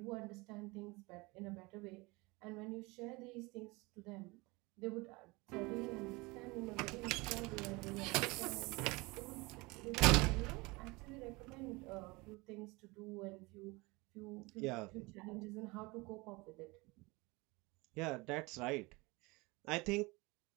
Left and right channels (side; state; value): left; quieter; 24.7 dB